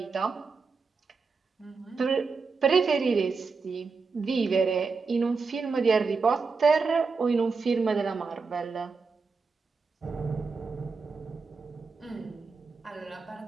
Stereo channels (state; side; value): quieter; left; 4.7 dB